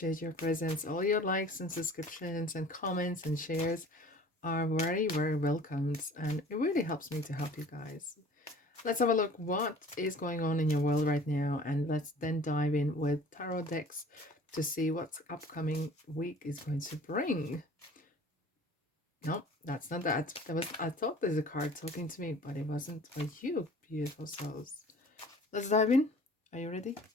your presence. All your likes and subscriptions and comments and shares are very, very welcomed. And it really helps me to help you guys. Let's have a look what is going on in your world right now, and let's then dive in with tarot decks to see what upcoming week is going to bring. No, that's not that. I thought there's a card talking to me, but it wasn't for you, beautiful souls. Let's dive in. Are you ready?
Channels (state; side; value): normal; both; correlation 0.47